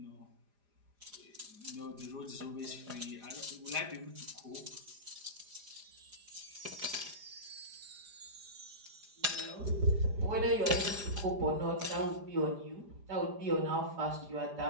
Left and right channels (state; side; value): late; left; 4.9 ms